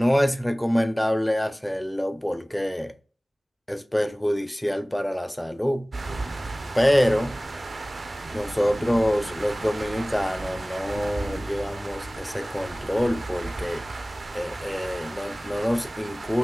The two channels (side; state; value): both; normal; correlation 0.98